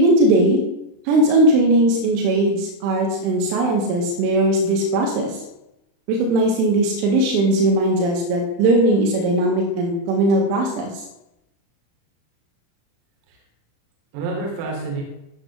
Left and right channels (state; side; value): late; left; 35 ms